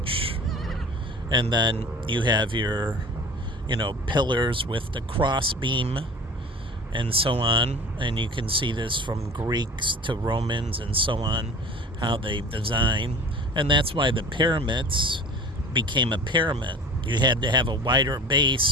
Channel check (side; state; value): both; normal; correlation 0.40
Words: And then you have your, pillars with the cross beam and so on. And you can see this from Greeks to Romans and so on, how they design. And that's why the pyramids became a pyramid. You had to have a wider